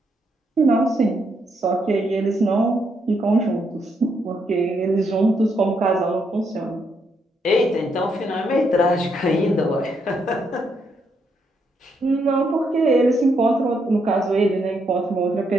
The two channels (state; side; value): normal; both; correlation 0.77